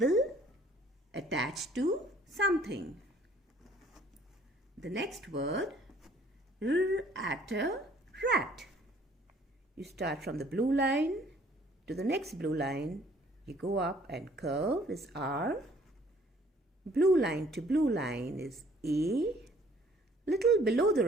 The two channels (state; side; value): normal; both; correlation 0.58